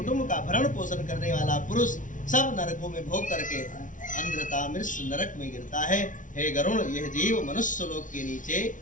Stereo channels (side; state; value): right; late; 0.38 ms